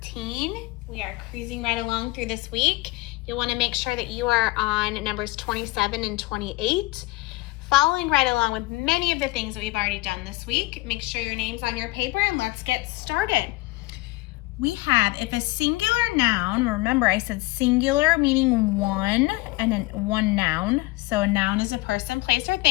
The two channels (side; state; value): right; quieter; 21.0 dB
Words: We are cruising right along through this week. You'll want to make sure that you are on numbers 27 and 28, following right along with many of the things that we've already done this week. Make sure your name's on your paper and let's get started. We have, if a singular noun, remember I said singular meaning one and then one noun. So a noun is a person, place, or